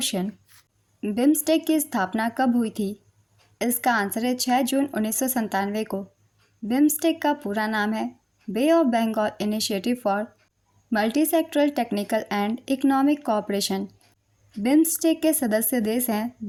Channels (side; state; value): both; identical; correlation 1.00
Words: बिम्स्टेक की स्थापना कब हुई थी? इसका आंसर है 6 जून 1997 को। बिम्स्टेक का पूरा नाम है bay of Bengal initiative for multi sectoral technical and economic cooperation. BIMSTEC के सदस्य देश हैं